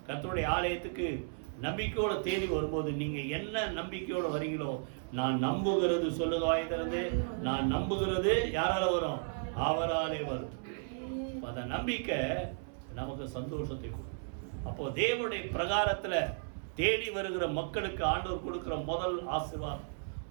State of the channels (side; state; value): left; silent; 55 dB below the other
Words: கர்த்தருடைய ஆலயத்துக்கு நம்பிக்கையோட தேடி வரும்போது நீங்க என்ன நம்பிக்கையோட வரீங்களோ, நான் நம்புகிறது சொல்லுங்க வாய் திறந்து, நான் நம்புகிறது யாரால வரும்? அவராலே வரும். அந்த நம்பிக்கை நமக்கு சந்தோஷத்தை கொடுக்கும். அப்போ தேவனுடைய பிரகாரத்துல தேடி வருகிற மக்களுக்கு ஆண்டவர் கொடுக்கிற முதல் ஆசீர்வாதம்,